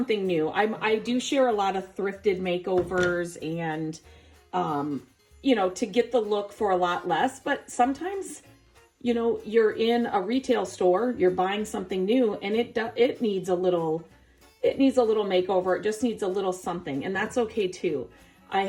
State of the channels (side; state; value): both; identical; correlation 1.00